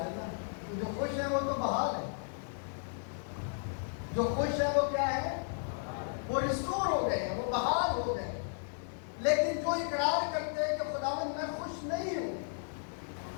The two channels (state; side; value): silent; right; 55 dB below the other